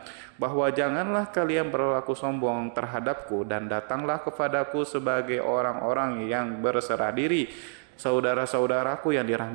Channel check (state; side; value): silent; left; digital silence